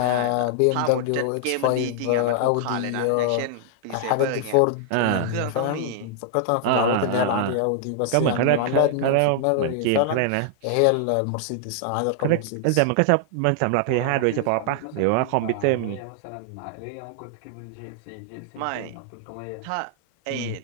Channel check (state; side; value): different; both; correlation -0.01